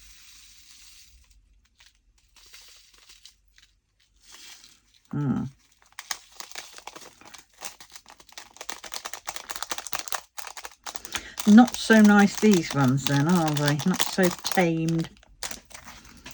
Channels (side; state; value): both; identical; correlation 1.00